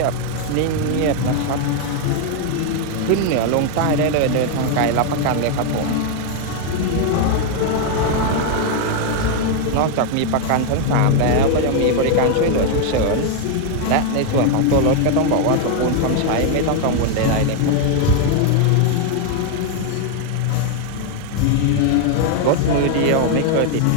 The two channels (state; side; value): different; both; correlation 0.00